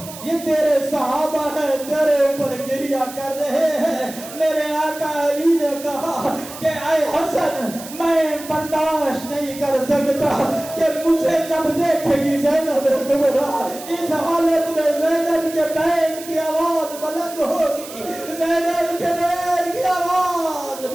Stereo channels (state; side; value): noise; right; hiss, 14 dB below the sound